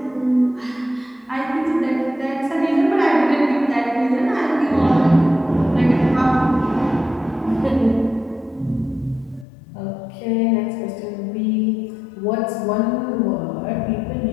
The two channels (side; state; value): right; drops out; at 9.5 s